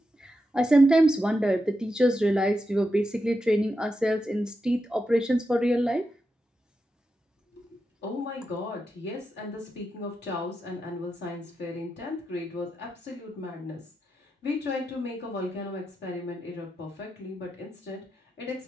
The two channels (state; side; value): normal; both; correlation 0.87